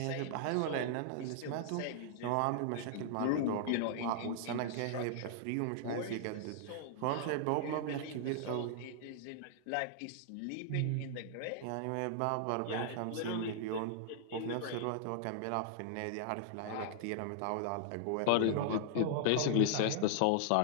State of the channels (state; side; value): different; both; correlation -0.01